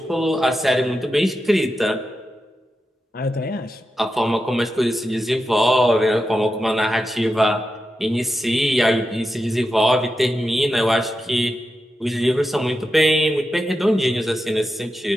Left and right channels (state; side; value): normal; both; correlation 0.89